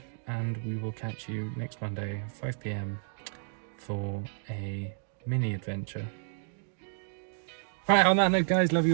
and we will catch you next Monday, 5 p.m. for a mini adventure. Right, on that note, guys, love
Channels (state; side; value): silent; left; digital silence